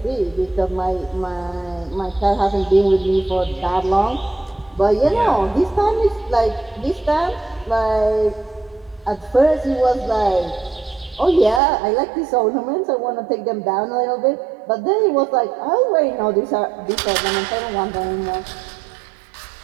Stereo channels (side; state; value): left; drops out; at 11.6 s